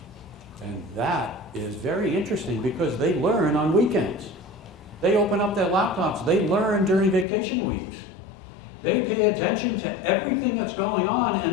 And that is very interesting because they learn on weekends. They open up their laptops. They learn during vacation weeks. They pay attention to everything that's going on,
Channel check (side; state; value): right; drops out; at 7.2 s